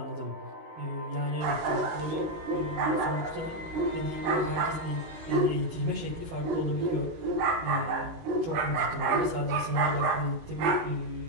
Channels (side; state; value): left; late; 20 ms